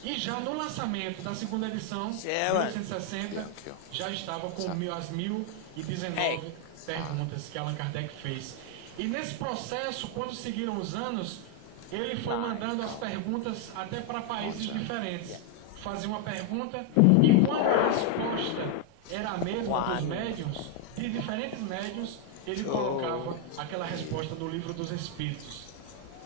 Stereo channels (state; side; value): different; both; correlation 0.00